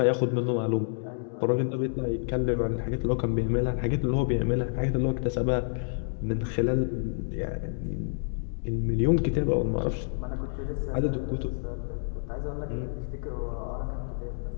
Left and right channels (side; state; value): right; silent; digital silence